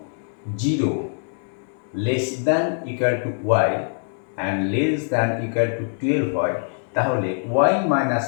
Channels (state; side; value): silent; right; 63 dB below the other